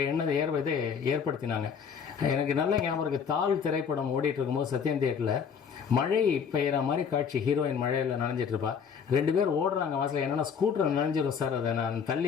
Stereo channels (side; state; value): right; quieter; 6.8 dB